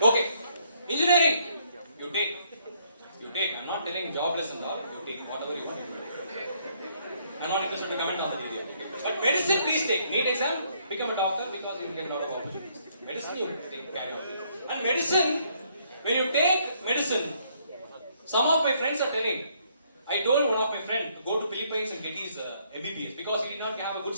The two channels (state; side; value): inverted; both; correlation -0.69